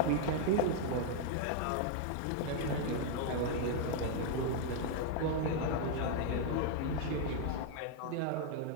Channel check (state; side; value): different; both; correlation 0.00